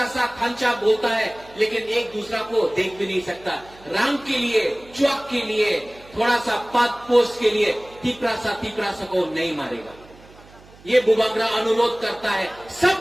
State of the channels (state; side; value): noise; right; hum, 24 dB below the sound